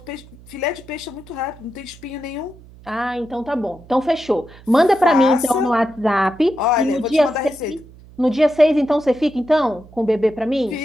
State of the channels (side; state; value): right; noise; hum, 22 dB below the sound